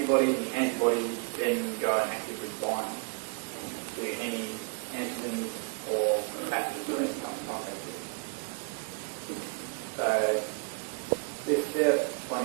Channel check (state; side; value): quieter; left; 35.7 dB